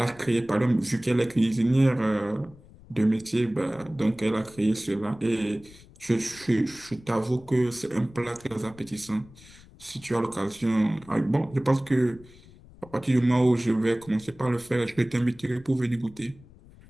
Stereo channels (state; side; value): noise; left; rumble, 23 dB below the sound